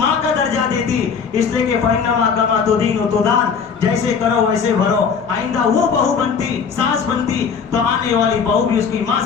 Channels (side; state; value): right; quieter; 6.2 dB